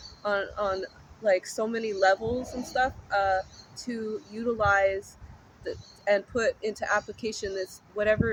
on like so many levels and stuff to utilize and put into application this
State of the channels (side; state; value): both; identical; correlation 1.00